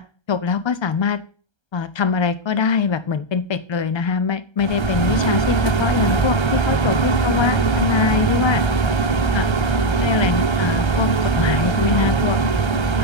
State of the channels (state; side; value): late; right; 1.3 ms